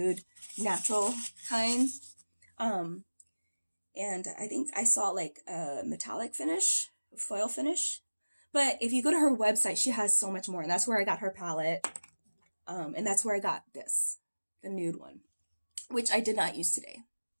natural kind. And I think I saw like a metallic finish, foil finish. But if you go to her website, she has so much more. And that's where I got her palette. And that's where I got this, the nude one, which I did not use today.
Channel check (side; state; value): both; inverted; correlation -1.00